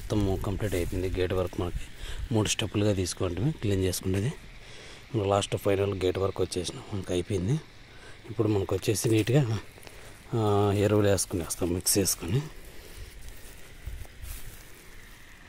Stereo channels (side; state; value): both; identical; correlation 1.00